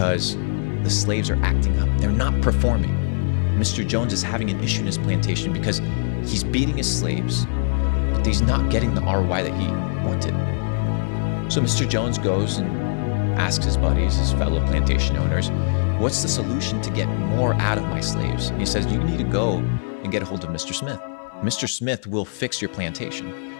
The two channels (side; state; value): right; silent; digital silence